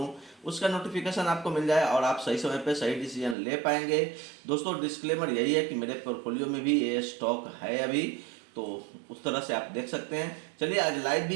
उसका नोटिफिकेशन आपको मिल जाए और आप सही समय पे सही डिसीजन ले पाएंगे। दोस्तों डिस्क्लेमर यही है कि मेरे पोर्टफोलियो में भी ये स्टॉक है अभी, तो उस तरह से आप देख सकते हैं। चलिए आज लाइव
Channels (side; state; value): left; drops out; at 3.4 s